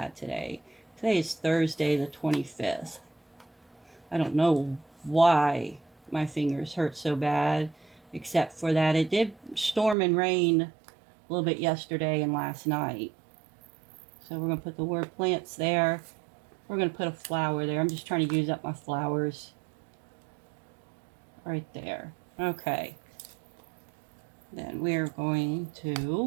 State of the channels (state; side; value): drops out; left; at 10.0 s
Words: today. Today is Thursday the 25th. I don't know why my fingers hurt so bad, except for that it did storm and rain a little bit yesterday and last night. So we're going to put the word plants there. We're going to put a flower there. I'm just trying to use up my flowers. Right there. Okay. Then we're going to